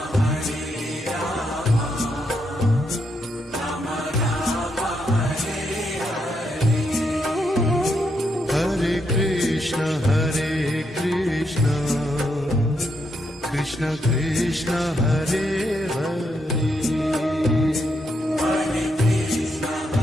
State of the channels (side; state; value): both; normal; correlation 0.79